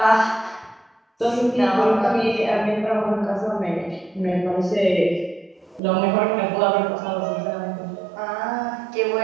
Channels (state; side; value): drops out; left; at 5.8 s